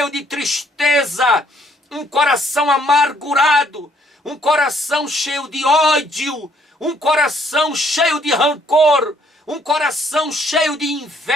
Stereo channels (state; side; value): normal; both; correlation 0.65